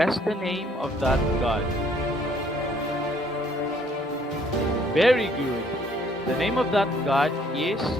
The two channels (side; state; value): both; normal; correlation 0.62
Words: the name of that god. Very good. The name of that god is